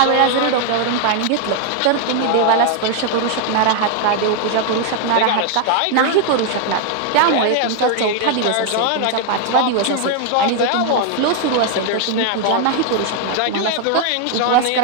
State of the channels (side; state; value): both; different; correlation 0.00